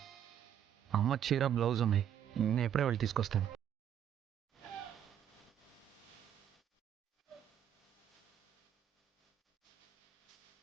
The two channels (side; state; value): left; quieter; 9.7 dB